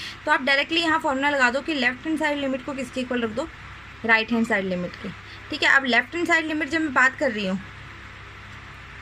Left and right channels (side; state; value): left; noise; hum, 27 dB below the sound